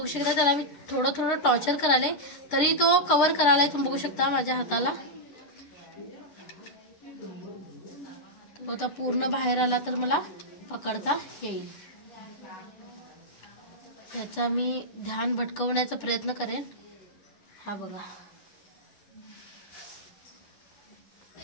शकता त्याला मी थोडं थोडं टॉर्चर करायला तरी तो कव्हर करायला. तुम्ही बघू शकता माझ्या हाताला तो आता पूर्ण बाहेर आला तर मला पकडता येईल. त्याचा मी ध्यान भटकवण्याचा प्रयत्न करेन. हा बघा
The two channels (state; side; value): late; right; 10 ms